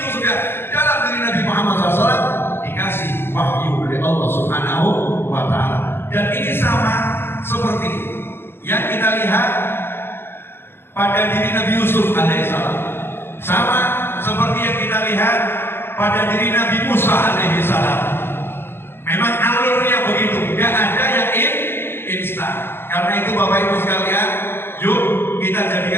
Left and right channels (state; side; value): late; right; 0.11 ms